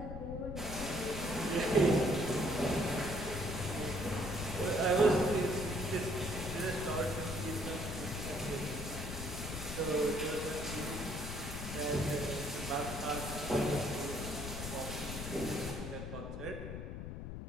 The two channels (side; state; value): left; noise; rumble, 7 dB below the sound